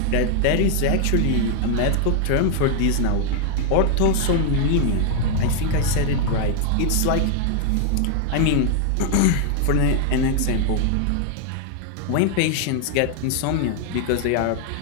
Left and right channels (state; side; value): different; both; correlation 0.00